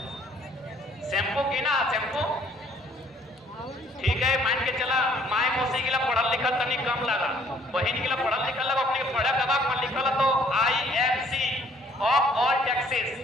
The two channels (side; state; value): both; normal; correlation 0.61